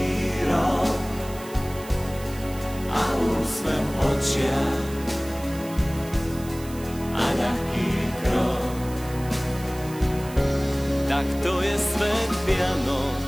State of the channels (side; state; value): right; noise; hiss, 17 dB below the sound